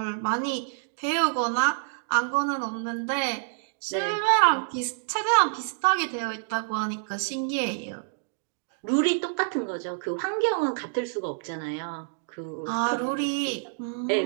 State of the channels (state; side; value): silent; left; digital silence